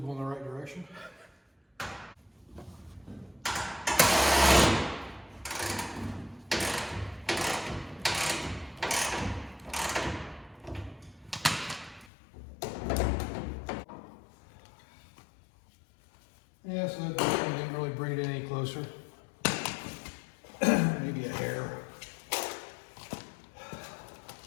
in the right direction. Yeah, so that didn't really bring it any closer. Maybe a hair.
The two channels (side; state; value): right; drops out; at 12.1 s